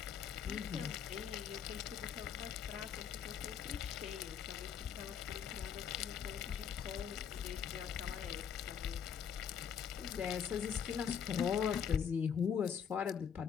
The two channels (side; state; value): right; quieter; 7.7 dB